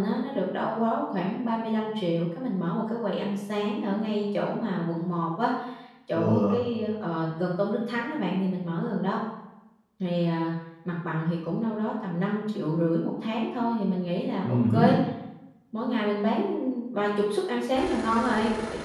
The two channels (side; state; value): both; identical; correlation 1.00